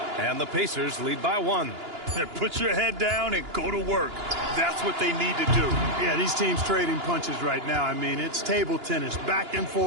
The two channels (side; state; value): left; late; 2.9 ms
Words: And the Pacers lead by 1. Put your head down and go to work. That's what they need to do. Yeah, these teams trading punches right now. I mean, it's table tennis. Back and